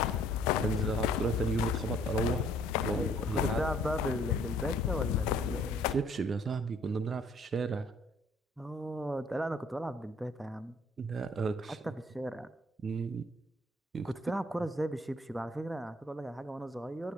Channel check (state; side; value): normal; both; correlation 0.60